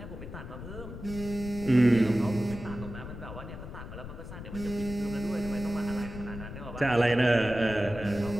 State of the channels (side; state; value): left; noise; rumble, 10 dB below the sound